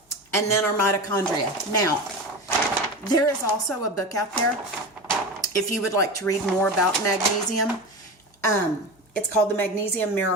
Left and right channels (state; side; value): normal; both; correlation 0.27